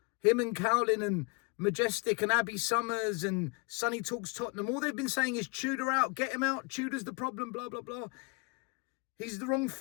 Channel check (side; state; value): right; quieter; 30.7 dB